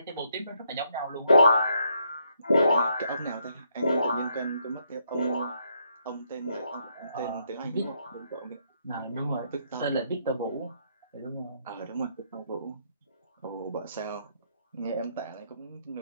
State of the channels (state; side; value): inverted; both; correlation -0.74